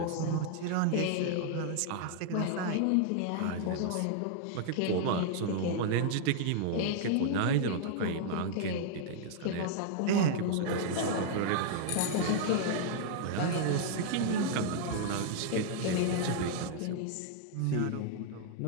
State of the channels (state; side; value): different; both; correlation -0.01